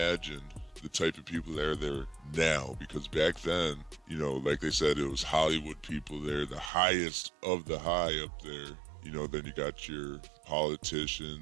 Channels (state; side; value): drops out; left; at 6.7 s